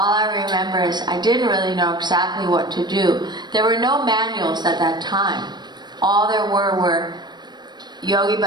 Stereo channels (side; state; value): left; late; 0.21 ms